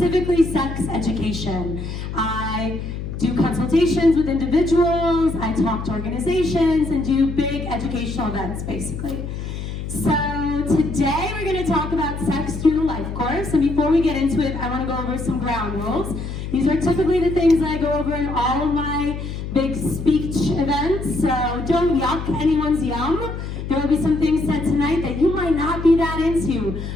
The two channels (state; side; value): noise; left; hum, 6 dB below the sound